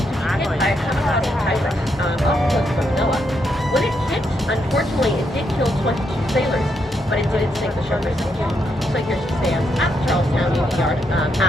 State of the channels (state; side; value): normal; both; correlation 0.79